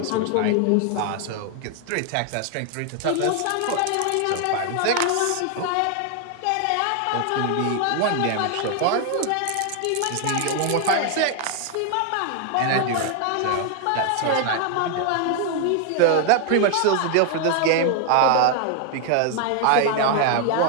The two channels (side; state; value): both; different; correlation 0.00